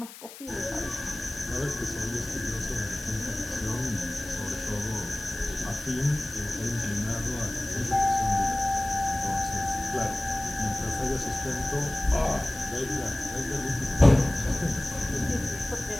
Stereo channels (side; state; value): left; noise; hiss, 15 dB below the sound